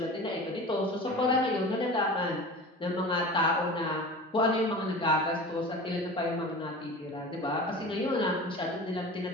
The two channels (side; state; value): both; normal; correlation 0.36